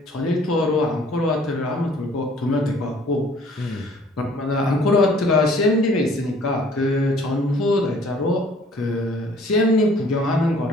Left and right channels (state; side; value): normal; both; correlation 0.56